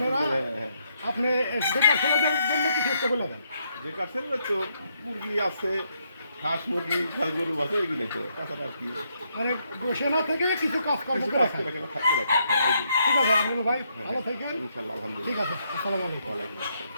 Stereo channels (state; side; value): inverted; both; correlation -0.76